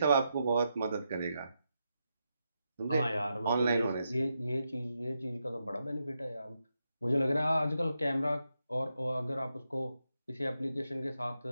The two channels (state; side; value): inverted; both; correlation -0.85